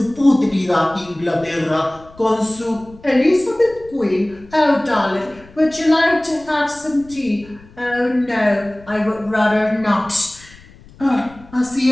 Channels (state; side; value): noise; left; rumble, 23 dB below the sound